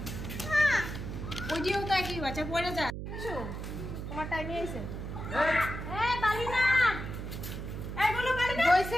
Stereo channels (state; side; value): noise; right; hum, 6 dB below the sound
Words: ওই দিও তো একই বাচ্চা পড়ে যা তোমার টাইমে এসে বালি না এগুলো বালি না হইছে